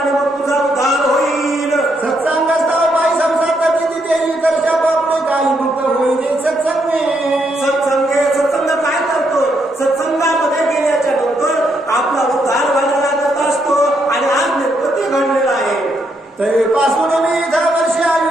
मग तुझा उद्धार होईल. सत्संग काय करतो? सत्संगामध्ये गेल्याच्या नंतर आपला उद्धार व्हायला लागत असतो आणि आज निर्पती घडलेला आहे. पासून मी 10 वर्ष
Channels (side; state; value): both; normal; correlation 0.77